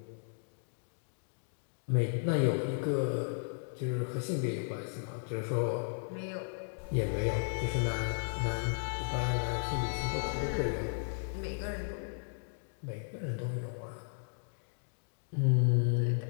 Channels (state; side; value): silent; right; digital silence